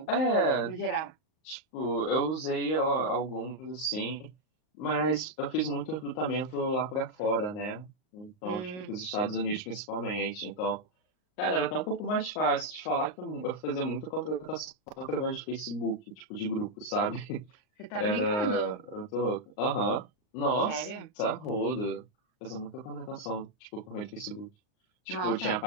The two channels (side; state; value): right; late; 38 ms